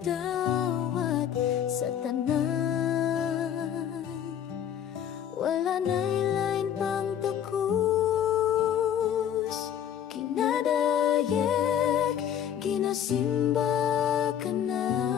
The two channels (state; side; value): quieter; right; 9.5 dB